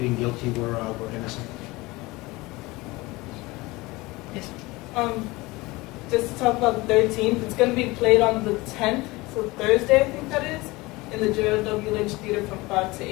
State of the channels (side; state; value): right; quieter; 21.9 dB